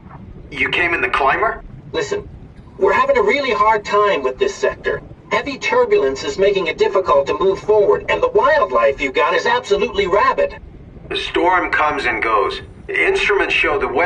You came in the climber? Listen, we're having a really hard time with this sector. Heavy turbulence is making it difficult to move forward, and the wildlife you got is absolutely rabid. The storm comes and goes. Instruments show the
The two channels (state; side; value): identical; both; correlation 1.00